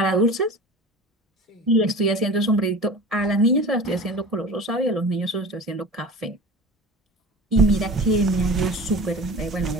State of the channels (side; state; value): both; normal; correlation 0.36